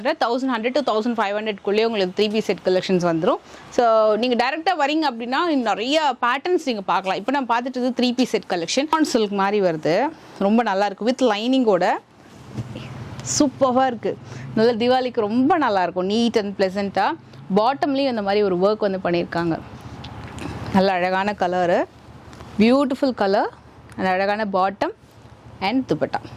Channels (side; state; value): both; identical; correlation 1.00